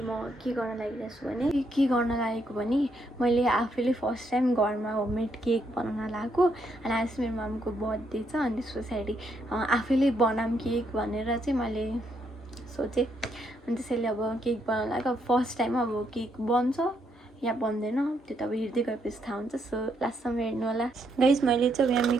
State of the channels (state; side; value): normal; both; correlation 0.76